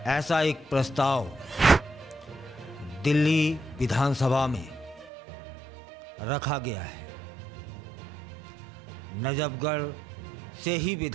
ऐसा एक प्रस्ताव दिल्ली विधानसभा में रखा गया है। नजफगढ़ से ही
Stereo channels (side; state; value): left; drops out; at 5.1 s